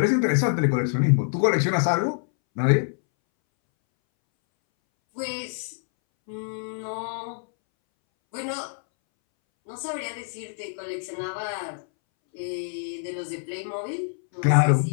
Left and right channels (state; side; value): silent; right; 61 dB below the other